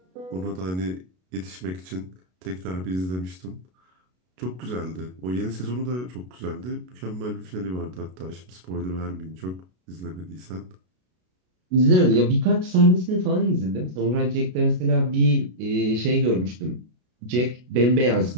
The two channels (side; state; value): left; late; 33 ms